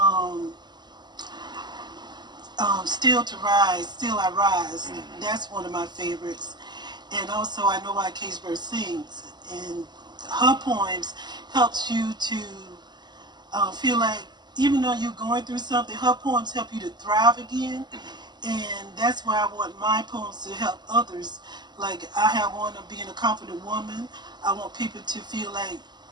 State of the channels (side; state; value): left; late; 0.21 ms